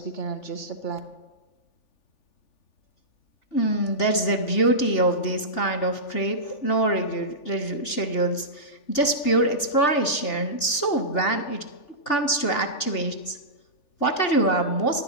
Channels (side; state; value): right; late; 2.8 ms